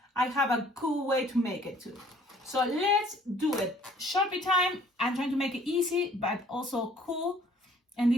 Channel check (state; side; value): normal; both; correlation 0.57